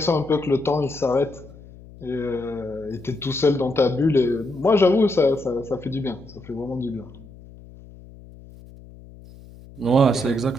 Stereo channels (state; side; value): noise; left; hum, 20 dB below the sound